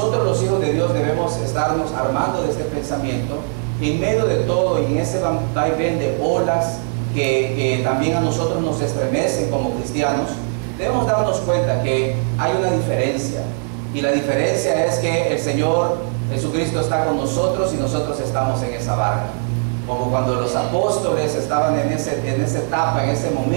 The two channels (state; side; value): silent; left; 58 dB below the other